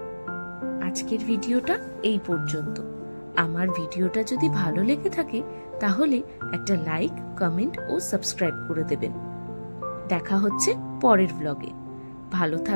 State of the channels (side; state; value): both; inverted; correlation -1.00